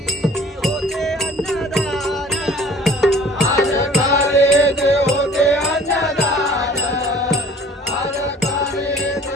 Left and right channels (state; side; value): normal; both; correlation 0.49